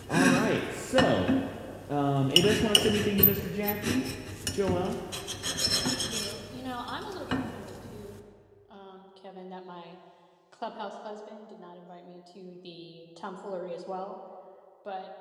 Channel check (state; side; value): identical; both; correlation 1.00